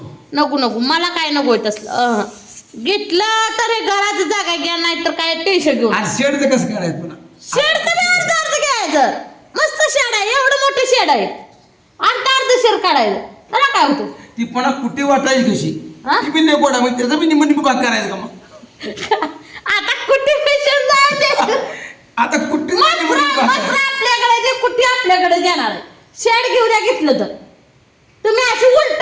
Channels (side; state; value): both; identical; correlation 1.00